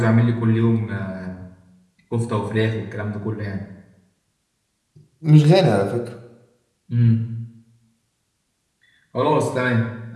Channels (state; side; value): identical; both; correlation 1.00